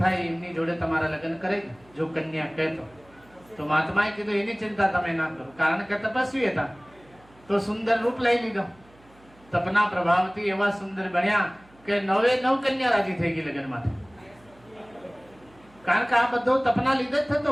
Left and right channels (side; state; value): right; noise; hum, 28 dB below the sound